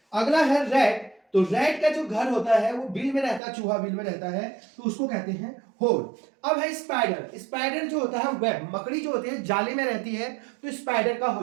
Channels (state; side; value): drops out; left; at 3.4 s